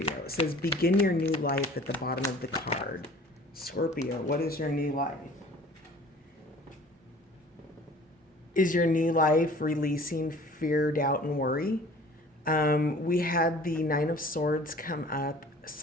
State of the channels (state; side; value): normal; both; correlation 0.48